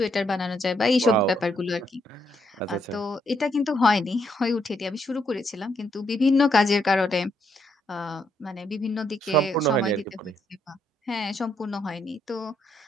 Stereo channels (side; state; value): both; normal; correlation 0.75